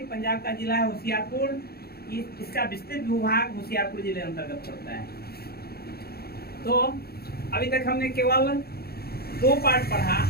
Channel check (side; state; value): right; late; 0.45 ms